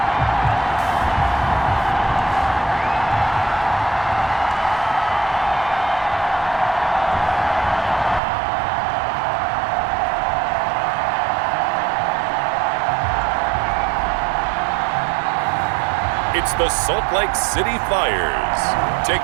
It's the Salt Lake City Flyers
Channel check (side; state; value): left; drops out; at 8.2 s